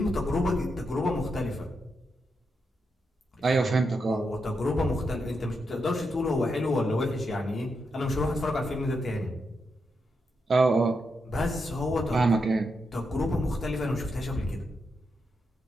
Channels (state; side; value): normal; both; correlation 0.84